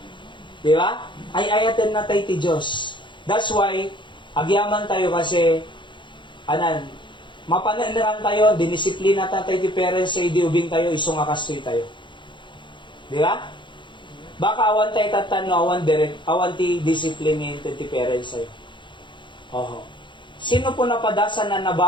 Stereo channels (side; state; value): right; late; 0.23 ms